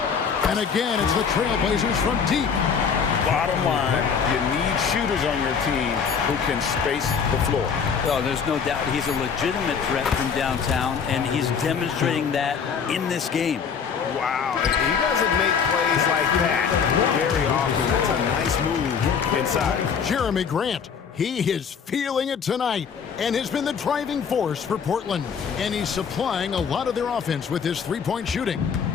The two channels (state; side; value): quieter; right; 6.5 dB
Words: And again, it's the Trailblazers from deep. Bottom line, you need shooters on your team who can space the floor. Oh, there's no doubt he's a legitimate threat from downtown, and he's demonstrating that in this game. Wow, he doesn't make plays like that very often. That's a nice move inside. Jeremy Grant, he is feeling it tonight and has been the driving force for Portland. And he's supplying a lot of their offense with his three-point shooting.